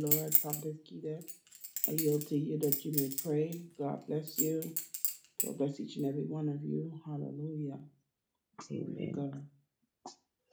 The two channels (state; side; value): identical; both; correlation 1.00